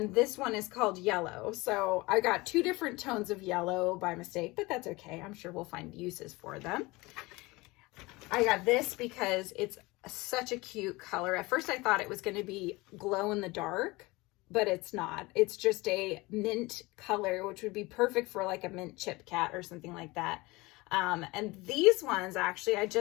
this one is called yellow. So I got two different tones of yellow by mistake, but that's okay. I'm sure we'll find uses for them. I got this because it's such a cute color. At first I thought it was going to be glow in the dark, but it's not. It's just a mint color, which would be perfect for like a mint chip cat or something like that. And these ones, actually, I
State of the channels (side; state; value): right; quieter; 22.6 dB